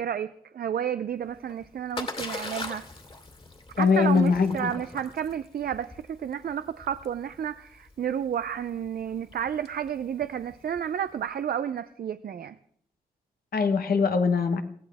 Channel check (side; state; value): both; normal; correlation 0.52